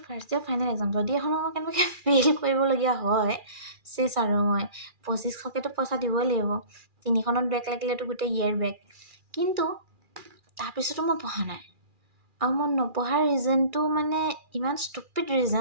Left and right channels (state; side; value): late; left; 2.4 ms